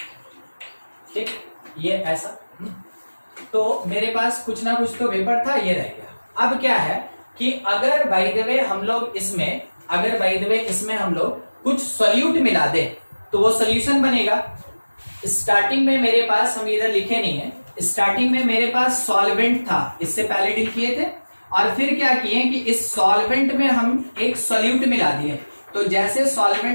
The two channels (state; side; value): inverted; both; correlation -1.00